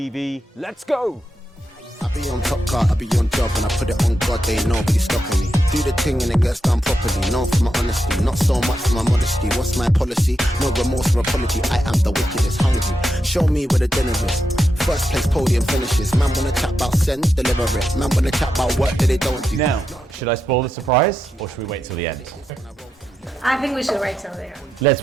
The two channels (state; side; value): normal; both; correlation 0.86